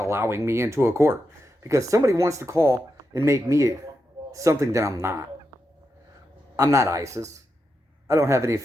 allowing me into a court. Because somebody wants to call and make me something that I'm not. I'm not ISIS. I don't have any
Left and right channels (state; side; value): normal; both; correlation 0.86